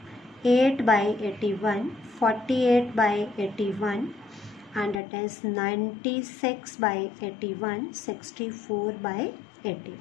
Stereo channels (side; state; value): right; drops out; at 5.0 s